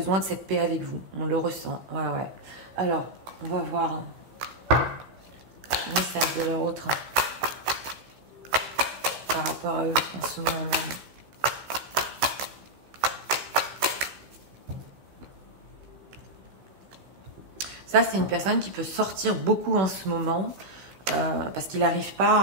de cette paix avec vous. On le ressent. Ouais, ouais. Alors, on va voir le message de leur autre par rapport à eux en ce moment même. Ça, c'est une personne qui peut sortir beaucoup en ce moment. Parce qu'il n'arrive pas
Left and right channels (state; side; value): late; left; 16 ms